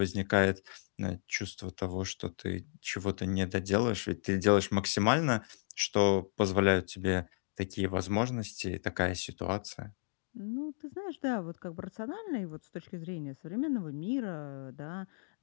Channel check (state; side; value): silent; right; digital silence